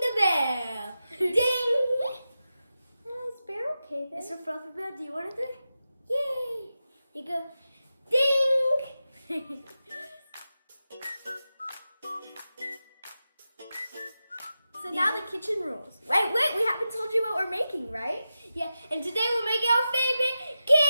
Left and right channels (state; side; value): inverted; both; correlation -0.91